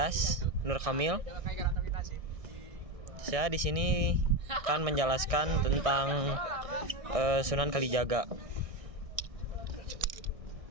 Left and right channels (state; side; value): late; left; 1.6 ms